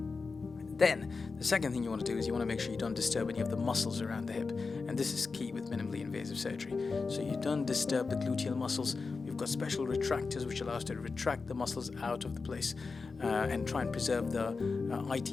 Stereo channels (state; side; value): quieter; right; 4.4 dB